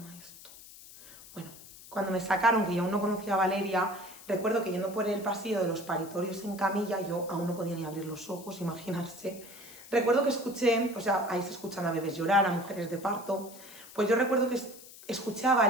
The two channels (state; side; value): noise; left; hiss, 18 dB below the sound